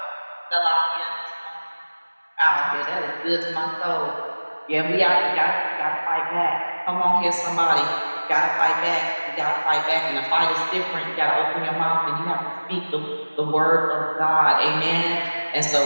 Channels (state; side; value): inverted; both; correlation -1.00